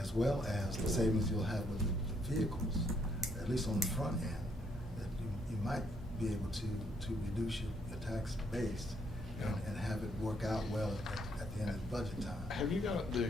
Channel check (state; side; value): normal; both; correlation 0.72